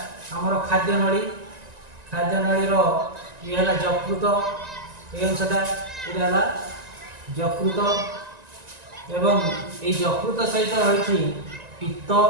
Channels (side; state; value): left; late; 1.9 ms